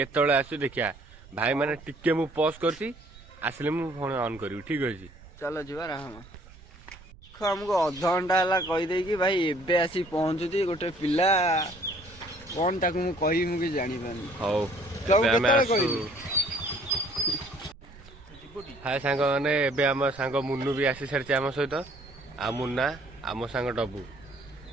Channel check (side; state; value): right; noise; rumble, 21 dB below the sound